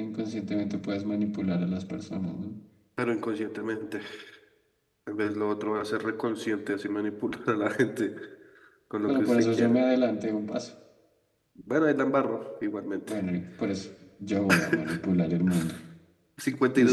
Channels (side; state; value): both; identical; correlation 1.00